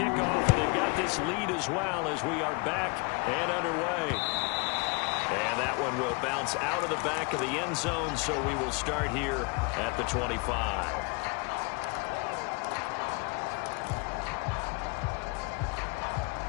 and they've got this lead as well as we are back and underway. And that one will bounce out of the back of the end zone, so we will start here at the 25.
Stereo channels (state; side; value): quieter; right; 29.7 dB